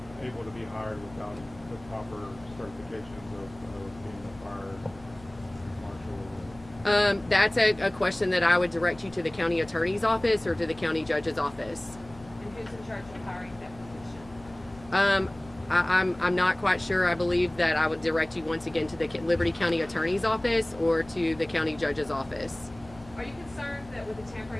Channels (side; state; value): left; noise; hum, 21 dB below the sound